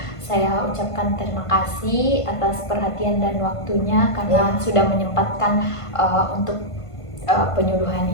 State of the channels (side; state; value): right; late; 1.5 ms